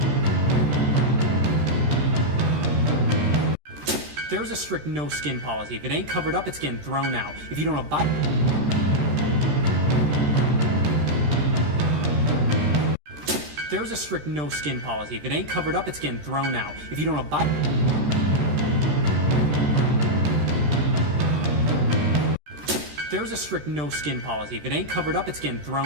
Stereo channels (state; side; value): late; left; 14 ms